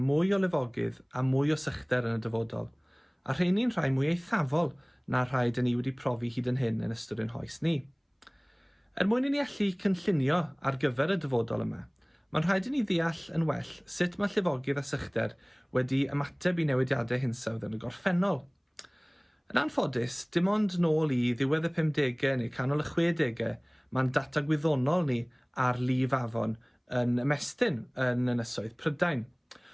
o lifogydd a mwy o sychder yn y dyfodol, a rheini'n rhai mwy eithafol na rhai dyn ni wedi profi hyd yn hyn yn ystod ein hoes ni. Mwyn i ni allu cynllunio ar gyfer y dyfodol yma, mae'n rhaid i ni ddeall yn well sut mae llifogydd a sychder wedi ymateb i newidiadau hinsawdd yn y gorffennol. Yn anffodus, dim ond nôl i ddiwedd y 50au neu canol y 60au, mae'n data gwyddonol ni ar lif afon yn ymestyn yn ynysoedd Prydain.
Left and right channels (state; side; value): identical; both; correlation 1.00